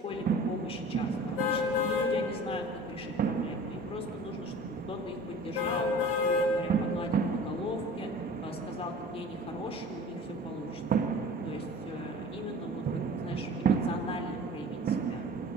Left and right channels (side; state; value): both; normal; correlation 0.42